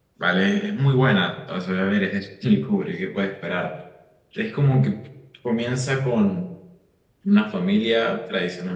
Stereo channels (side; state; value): both; identical; correlation 1.00